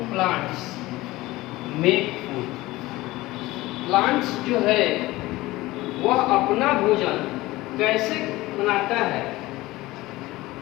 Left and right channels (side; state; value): right; quieter; 19.0 dB